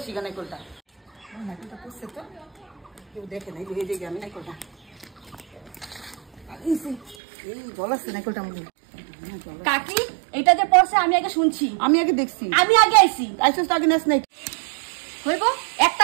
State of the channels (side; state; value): left; drops out; at 7.2 s